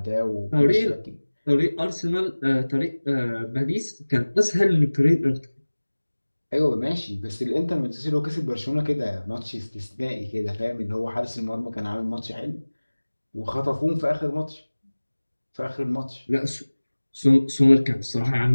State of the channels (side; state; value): both; inverted; correlation -1.00